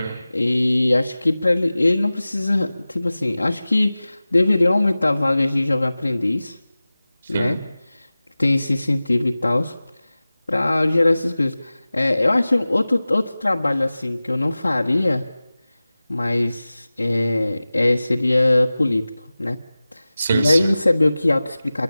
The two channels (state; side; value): inverted; both; correlation -0.97